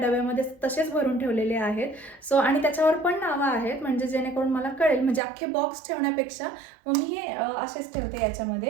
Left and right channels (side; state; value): left; drops out; at 5.2 s